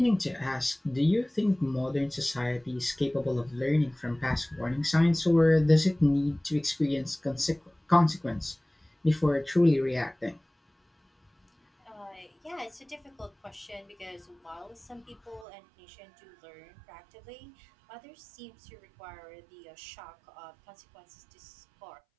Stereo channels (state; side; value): drops out; left; at 15.5 s